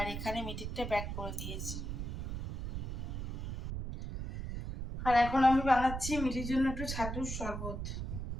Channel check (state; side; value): noise; right; rumble, 5 dB below the sound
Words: এখানে মিঠিরটা প্যাক করে দিয়েছি। আর এখন আমি বানাচ্ছি মিঠির জন্য একটু ছাতুর শরবত।